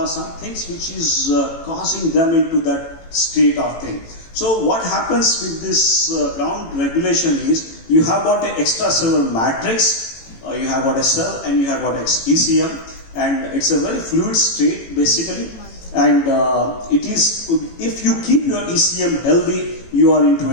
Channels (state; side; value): late; right; 18 ms